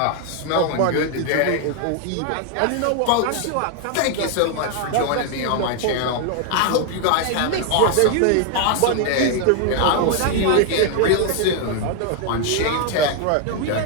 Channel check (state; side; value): different; both; correlation 0.00